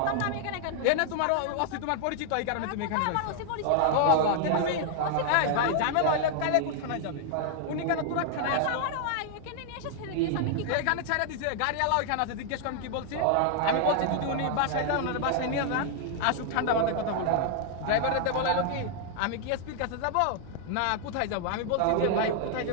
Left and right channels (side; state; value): both; different; correlation 0.00